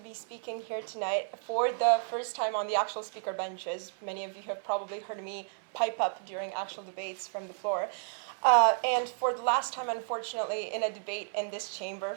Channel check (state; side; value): silent; left; 56 dB below the other